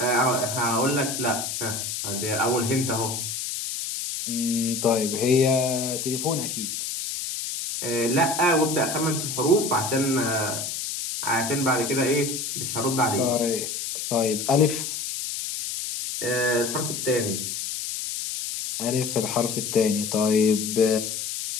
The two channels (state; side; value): noise; left; hiss, 4 dB below the sound